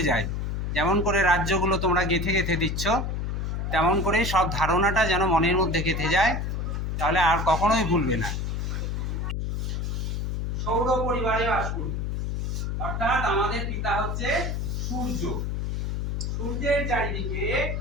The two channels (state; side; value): noise; left; hum, 1 dB below the sound